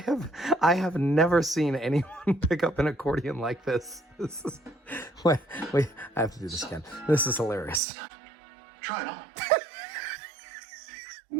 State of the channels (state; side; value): drops out; left; at 7.8 s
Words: have never seen anyone pick up an accordion like this. This is wait, I have to do this again. This is hilarious. Try it on.